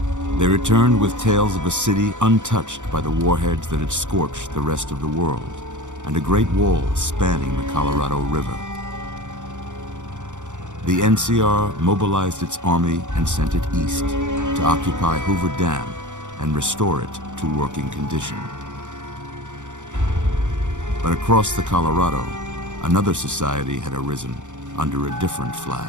They returned with tales of a city untouched by the warheads that had scorched the rest of the world, and a great wall spanning the Colorado River. The NCR mobilized its army and sent it east to occupy Hoover Dam and restore it to working condition. But across the Colorado, another society had arisen under a different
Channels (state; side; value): late; left; 0.85 ms